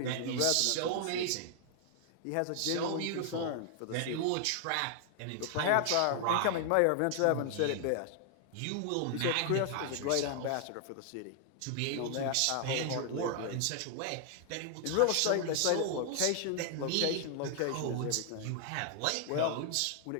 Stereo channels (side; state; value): both; different; correlation 0.00